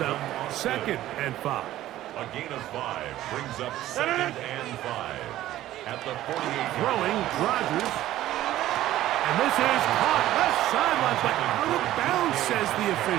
up 2nd and 5. A gain of 5 brings up 2nd and 5. At the 48. Throwing, Rodgers. And this is caught left sideline, but out of bounds, says the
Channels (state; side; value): quieter; left; 14.1 dB